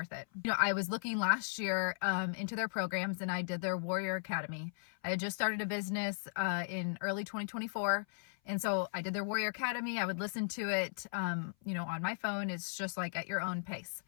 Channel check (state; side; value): silent; right; 53 dB below the other